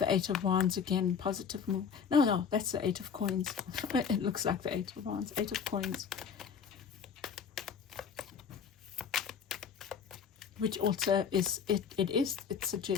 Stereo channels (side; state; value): right; quieter; 6.8 dB